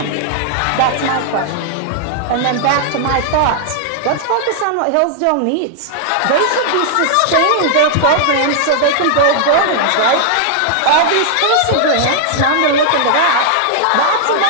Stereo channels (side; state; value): both; different; correlation -0.01